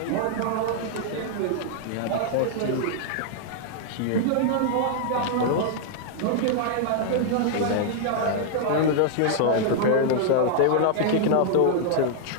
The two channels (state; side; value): different; both; correlation -0.01